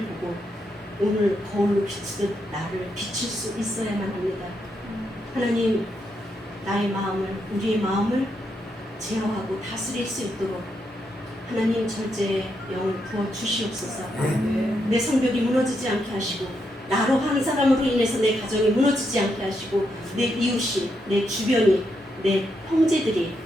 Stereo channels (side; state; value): both; normal; correlation 0.81